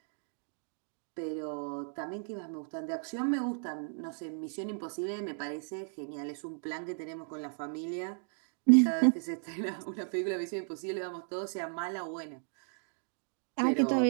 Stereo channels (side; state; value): left; silent; 55 dB below the other